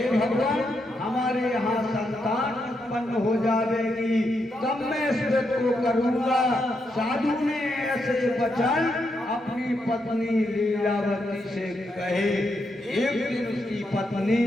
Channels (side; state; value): both; normal; correlation 0.81